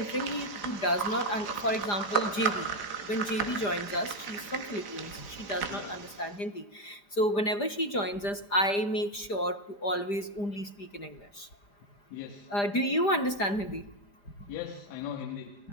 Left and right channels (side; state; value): right; late; 4.9 ms